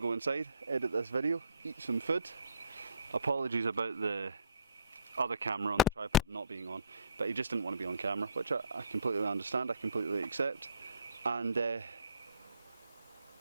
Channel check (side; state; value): both; inverted; correlation -0.61